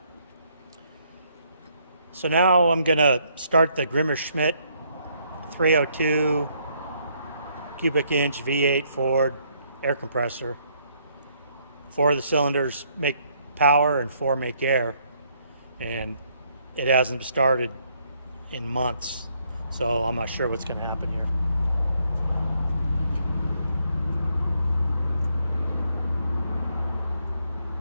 So now I'm gonna start the Grimmer-Schmidt 302 cubic inch V8 Ford air compressor. 4 of the cylinders make power and 4 make air, and it hasn't started in months, so I'm not sure what's going to happen here.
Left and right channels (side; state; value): both; inverted; correlation -0.70